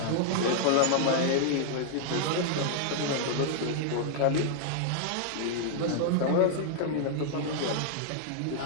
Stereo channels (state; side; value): different; both; correlation -0.01